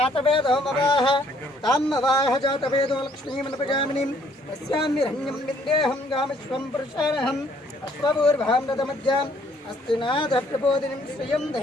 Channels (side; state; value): both; normal; correlation 0.64